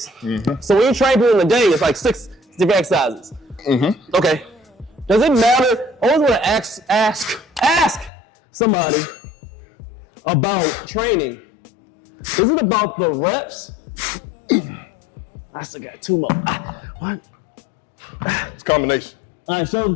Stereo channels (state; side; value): drops out; right; at 8.1 s